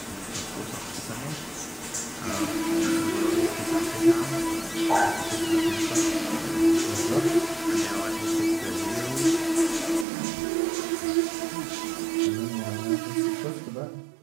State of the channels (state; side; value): drops out; left; at 10.1 s